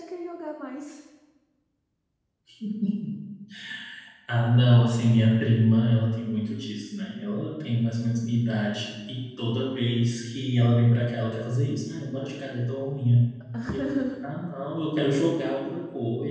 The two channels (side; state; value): both; identical; correlation 1.00